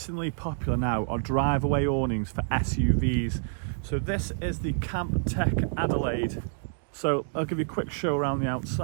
popular now are drive-away awnings for SUVs. So this is the Camptech Adelaide. So I'll give you a quick show around the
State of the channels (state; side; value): silent; left; digital silence